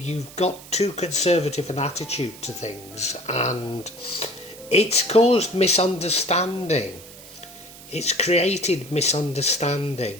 got too conservative an attitude to things, and it's caused misunderstanding. It's created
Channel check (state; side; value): noise; right; hiss, 18 dB below the sound